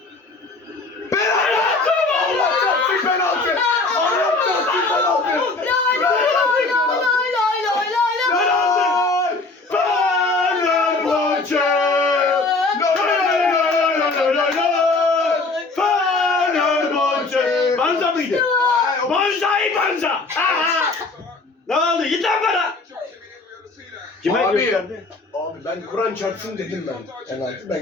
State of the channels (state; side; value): quieter; right; 3.6 dB